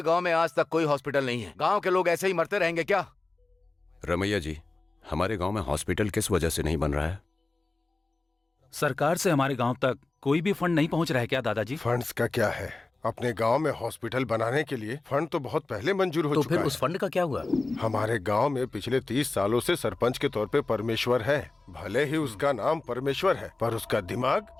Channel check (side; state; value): right; quieter; 3.2 dB